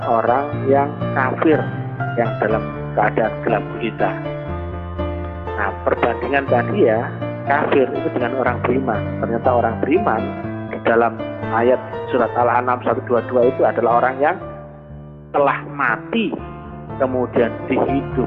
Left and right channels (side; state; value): both; identical; correlation 1.00